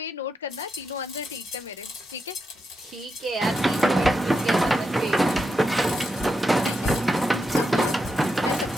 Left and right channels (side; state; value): both; normal; correlation 0.85